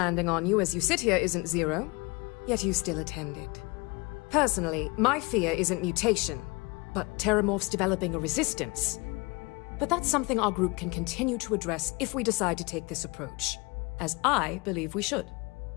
on you as you sit here isn't zero, yet you still attended. Personally, my fear isn't mutation, but Terramorphs developing a resistance. But that's something our group can continue to address if we decide to take this approach. As I believe we should.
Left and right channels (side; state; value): right; quieter; 26.8 dB